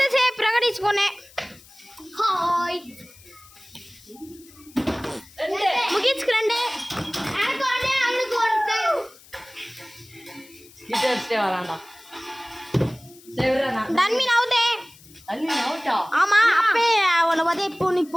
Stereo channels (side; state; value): left; noise; hiss, 24 dB below the sound